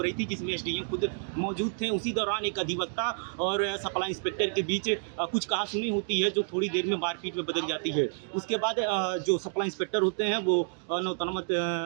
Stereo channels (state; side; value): silent; left; digital silence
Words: रही थी, जिसमें SDM खुद मौजूद थे। उसी दौरान एक अधिवक्ता और सप्लाई इंस्पेक्टर के बीच कुछ कहासुनी होती है, जो थोड़ी देर में मारपीट में बदल जाती है। उसके बाद जो सप्लाई इंस्पेक्टर होते हैं वो नौतनवा